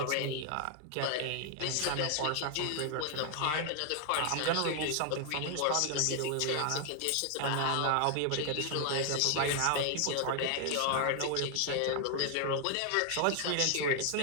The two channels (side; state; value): both; different; correlation 0.00